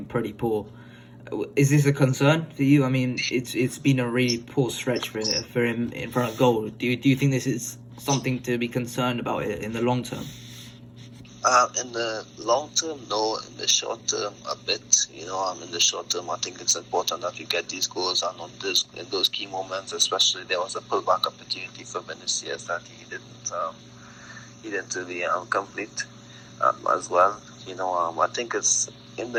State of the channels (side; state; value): both; identical; correlation 1.00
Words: pretty poor. Is this a concern for you? I mean, it's been a really poor stretch for him in front of goal. Do you think this is something to be concerned about in the long term? In the long term, no. In the short term, a bit. In the short term, I think it's important that we get these goals, and in those key moments, especially there was a pullback opportunity for Vinicius that he didn't really complete as well. I think it's in